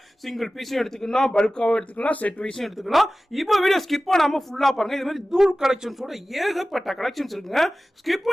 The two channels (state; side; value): normal; both; correlation 0.96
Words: சிங்கிள் பீஸும் எடுத்துக்கலாம், பல்காவும் எடுத்துக்கலாம், செட் வைஸும் எடுத்துக்கலாம். இப்போ வீடியோ ஸ்கிப் பண்ணாம ஃபுல்லா பாருங்க. இது மாதிரி தூள் கலெக்ஷன்ஸோட ஏகப்பட்ட கலெக்ஷன்ஸ் இருக்குங்க. ஸ்கிப்